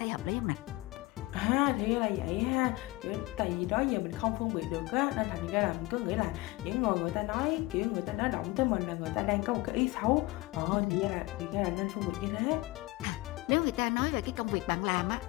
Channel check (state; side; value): quieter; right; 20.8 dB